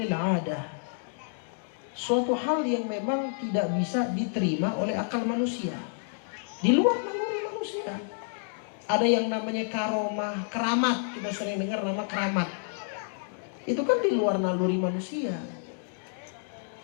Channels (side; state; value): right; silent; digital silence